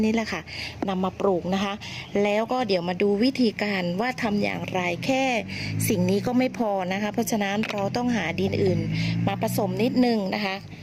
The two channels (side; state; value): both; identical; correlation 1.00